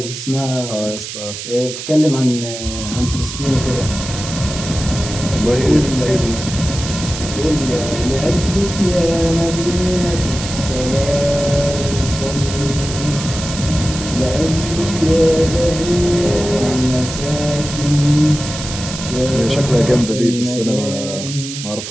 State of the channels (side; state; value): right; noise; hiss, 8 dB below the sound